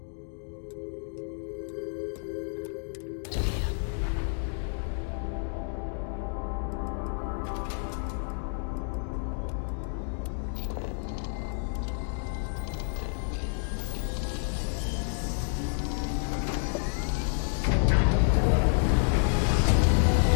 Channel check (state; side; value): silent; right; 58 dB below the other